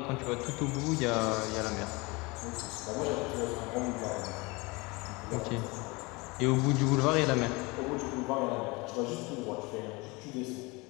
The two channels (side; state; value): right; quieter; 25.6 dB